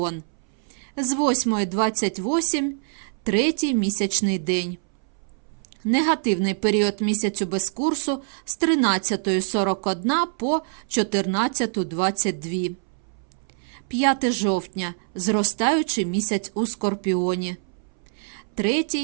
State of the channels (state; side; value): silent; left; 61 dB below the other